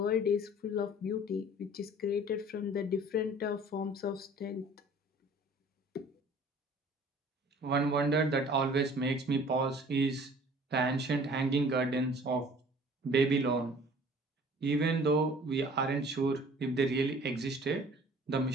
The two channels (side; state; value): both; normal; correlation 0.50